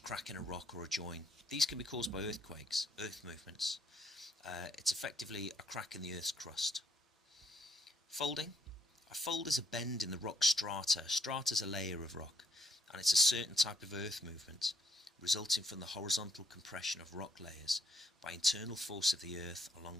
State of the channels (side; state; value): both; normal; correlation 0.72